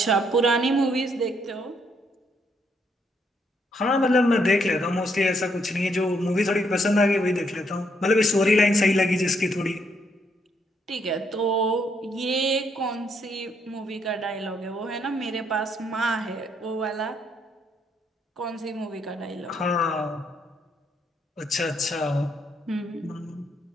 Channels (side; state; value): both; normal; correlation 0.73